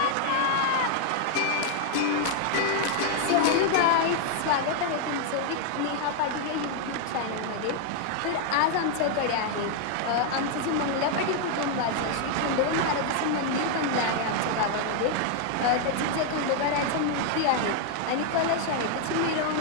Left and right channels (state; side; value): different; both; correlation 0.00